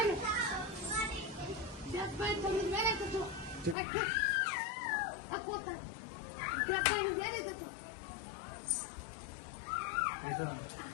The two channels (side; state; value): right; drops out; at 3.8 s